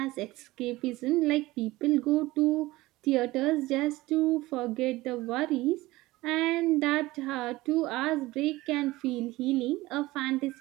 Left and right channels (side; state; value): left; quieter; 19.0 dB